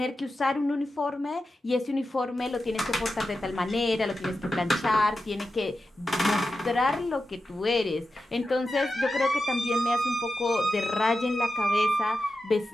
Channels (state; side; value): normal; both; correlation 0.91